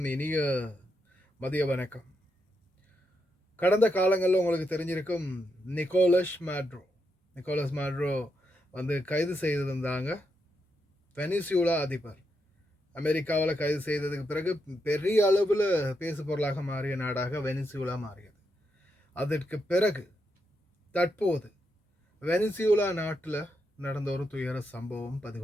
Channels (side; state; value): both; normal; correlation 0.82